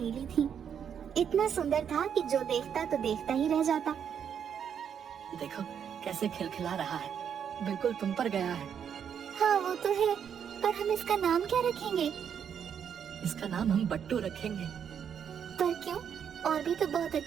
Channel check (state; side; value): quieter; left; 8.1 dB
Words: थी, इतना सुंदर था कि जो देखता तो देखता ही रह जाता। देखो कैसे खिलखिला रहा है, बिल्कुल तुम पर गया है। हाँ वो तो है, पर हम इसका नाम क्या रखेंगे? इसका नाम हम बट्टू रखेंगे। पर क्यों? और भी तो बहुत